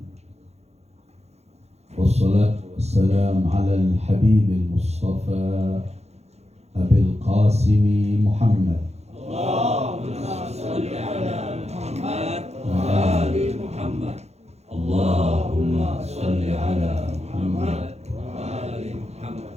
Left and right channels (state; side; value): late; left; 0.31 ms